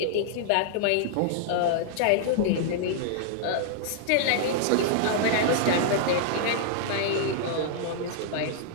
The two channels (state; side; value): different; both; correlation -0.01